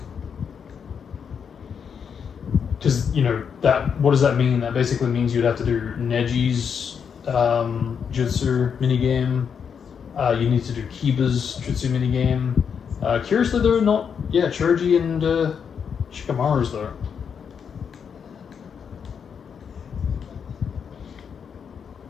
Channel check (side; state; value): right; quieter; 7.0 dB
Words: Because, you know, what does that mean? That basically means you'd have to do Neji's jutsu minigame. You need to do Kiba's jutsu minigame. Curiously, they're not... Yeah, Choji and Shikamaru's there.